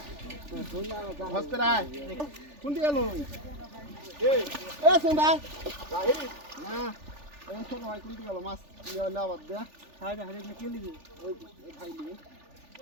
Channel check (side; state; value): left; late; 3.4 ms